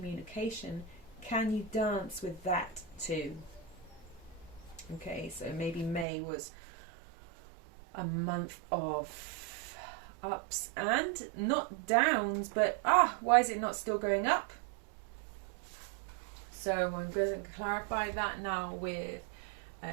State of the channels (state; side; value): drops out; left; at 6.1 s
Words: can you dance with that too? Okay, so maybe May was a month of ups and not downs, but why is it not still going up? So I'm going to clarify that now with